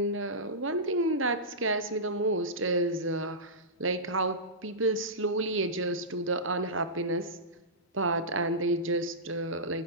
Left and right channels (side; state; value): both; normal; correlation -0.17